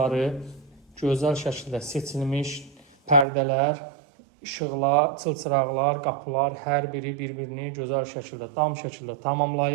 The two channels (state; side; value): drops out; left; at 3.2 s